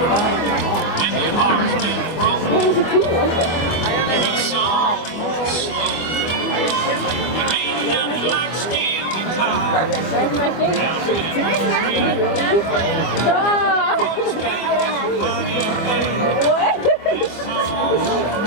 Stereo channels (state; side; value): late; right; 25 ms